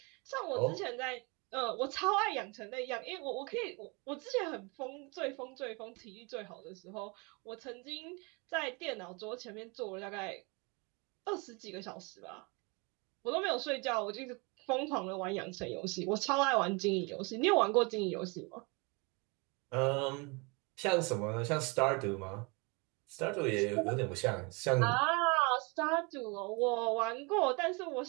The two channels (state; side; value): quieter; left; 29.8 dB